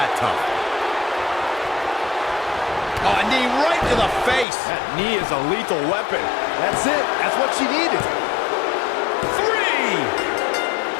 tough. Oh, a knee right to the face. That knee is a lethal weapon. That's it. That's what she needed. 3.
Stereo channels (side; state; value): right; drops out; at 4.5 s